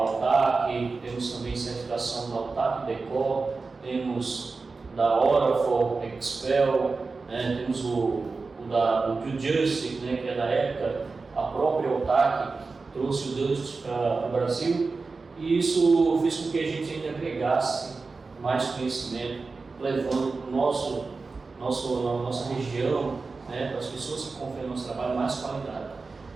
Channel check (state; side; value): quieter; left; 4.1 dB